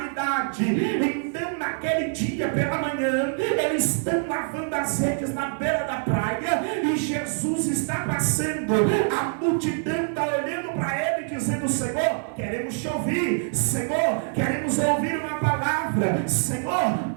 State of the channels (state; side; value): silent; left; 62 dB below the other